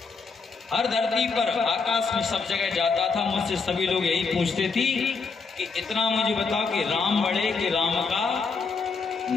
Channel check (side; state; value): right; quieter; 4.8 dB